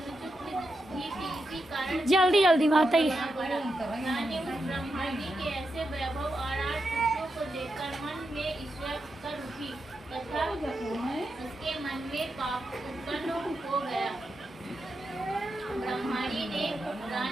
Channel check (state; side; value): normal; both; correlation 0.86